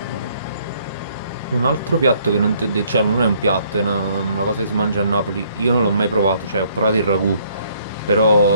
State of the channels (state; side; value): inverted; both; correlation -0.65